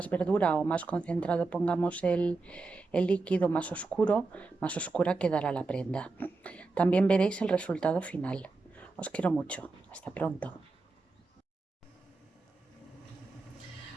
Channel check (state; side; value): quieter; left; 3.7 dB